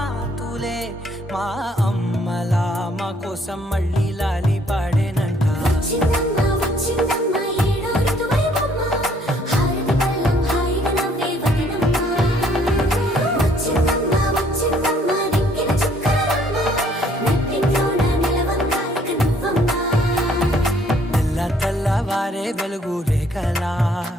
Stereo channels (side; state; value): both; normal; correlation 0.63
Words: మా అమ్మలా మా కోసం మళ్ళీ లాలి పాడేనంట వచ్చిందమ్మ ఏడో ఋతువైవమ్మ హారతి పళ్ళం హాయిగా నవ్వే వదినమ్మ వారే వెలుగు రేఖలా